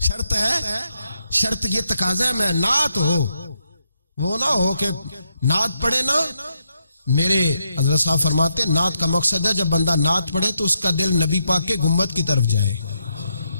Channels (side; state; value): both; inverted; correlation -0.81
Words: شرط ہے، شرط یہ تقاضا ہے میں نعت ہو. وہ نہ ہو کہ نعت پڑھے نا. میرے حضرت صاحب فرماتے ہیں نعت کا مقصد ہے جب بندہ نعت پڑھے تو اس کا دل نبی پاک کے گنبد کی طرف جائے،